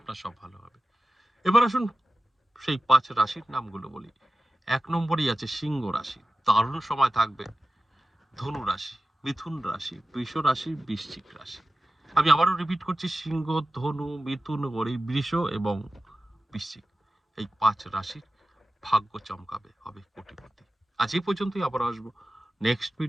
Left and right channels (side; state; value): both; normal; correlation 0.95